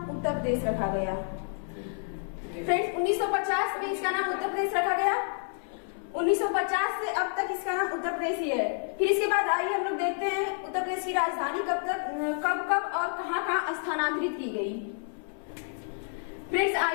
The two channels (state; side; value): silent; right; 58 dB below the other